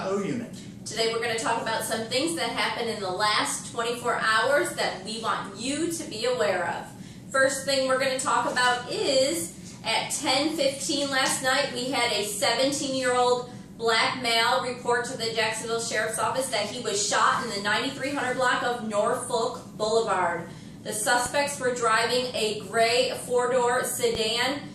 unit. Today we're going to talk about some things that happened in the last 24 hours that we want you to be aware of. First thing we're going to talk about is at 10:15 last night we had a 17-year-old black male report to the Jacksonville Sheriff's Office that he was shot in the 9300 block of Norfolk Boulevard. The suspects were driving a gray four-door sedan.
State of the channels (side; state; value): both; identical; correlation 1.00